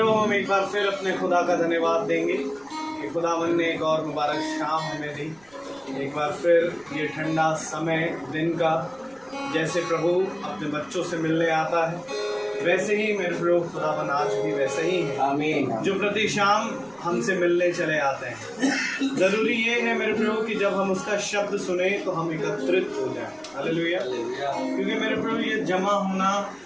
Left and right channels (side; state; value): right; noise; rumble, 30 dB below the sound